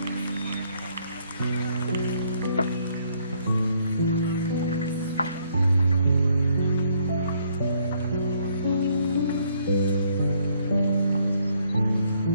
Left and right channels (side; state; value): both; inverted; correlation -0.68